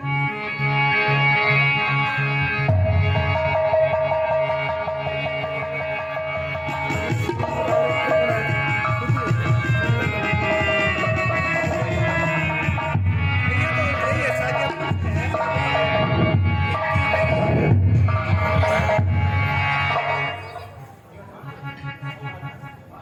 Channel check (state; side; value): identical; both; correlation 1.00